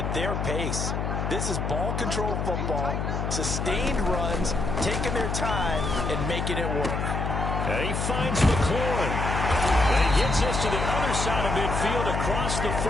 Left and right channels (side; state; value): left; noise; hum, 1 dB below the sound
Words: their pace. This is ball control football, sustained runs, taking their time and making it work. And he finds McLaurin. And he gets this to the other side of midfield across the